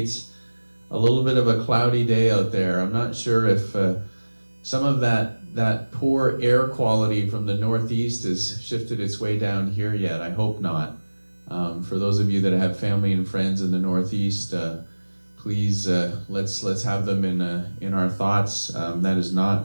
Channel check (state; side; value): inverted; both; correlation -1.00